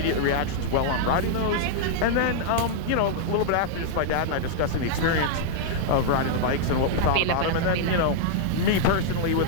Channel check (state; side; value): different; both; correlation -0.01